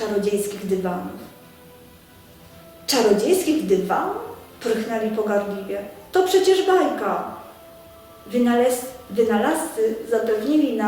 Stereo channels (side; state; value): both; identical; correlation 1.00